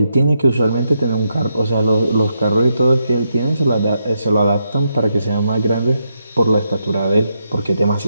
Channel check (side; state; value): both; inverted; correlation -0.82